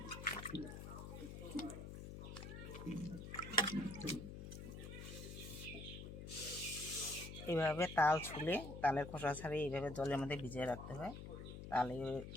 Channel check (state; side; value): noise; left; hum, 9 dB below the sound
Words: এইভাবে তাল ছুলে তালের খোসা ছাড়িয়ে এইভাবে জলের মধ্যে ভিজিয়ে রাখতে হয়। তাহলে